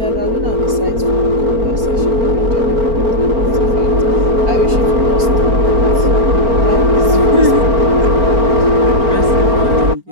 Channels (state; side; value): late; left; 4.4 ms